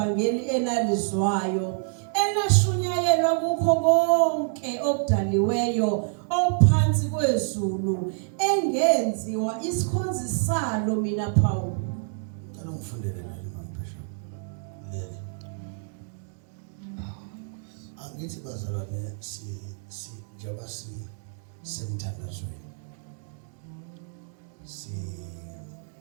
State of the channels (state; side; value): silent; left; digital silence